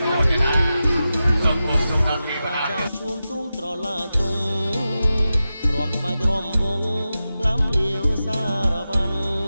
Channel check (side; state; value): both; inverted; correlation -0.92